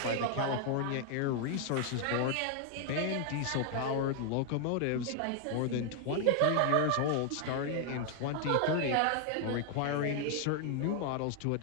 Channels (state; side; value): different; both; correlation 0.00